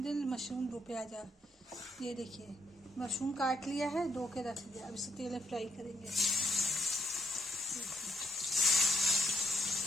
मशरूम दो प्याजा, ये देखिए मशरूम काट लिया है, धो के रख दिया। अब इसे तेल में फ्राई करेंगे।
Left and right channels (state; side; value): normal; both; correlation 0.78